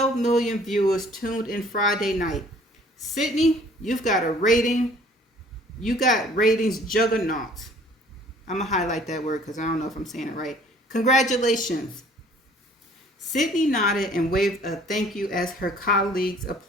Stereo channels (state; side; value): normal; both; correlation 0.55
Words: million viewers tuned in Friday night. Sydney, you got ratings juggernaut. I'm going to highlight that word because I don't know if I'm saying it right. Congratulations. Sydney nodded and waved a thank you as her colleagues